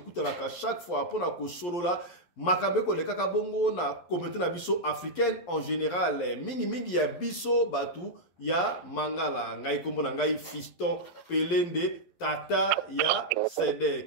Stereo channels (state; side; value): late; right; 11 ms